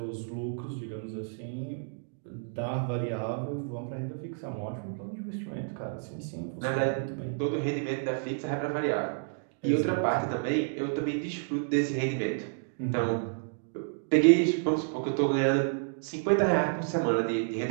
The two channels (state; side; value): silent; left; digital silence